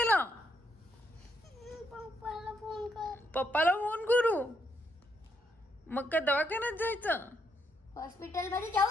पप्पाला फोन कर. पप्पाला फोन करू? मग काय दवाखान्यात जायचं? हॉस्पिटल मध्ये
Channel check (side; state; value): both; normal; correlation 0.76